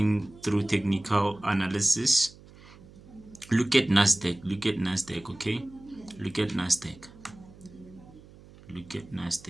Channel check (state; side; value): noise; right; hum, 22 dB below the sound